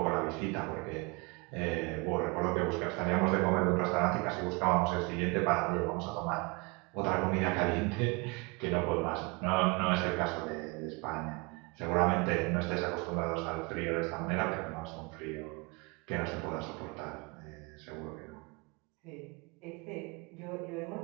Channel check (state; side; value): quieter; left; 28.2 dB